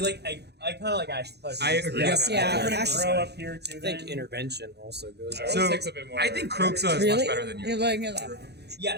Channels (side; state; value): left; late; 0.48 ms